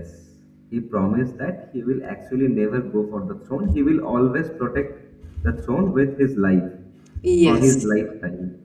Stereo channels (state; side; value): identical; both; correlation 1.00